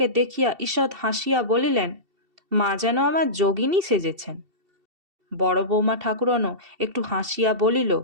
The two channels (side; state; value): left; late; 2.7 ms